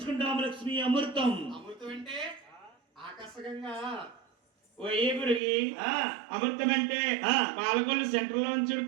లక్ష్మి. అమృతం అంటే ఆకర్షకంగా అమృతం అంటే పాలకొల్లు సెంటర్ లో నుంచి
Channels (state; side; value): drops out; left; at 5.4 s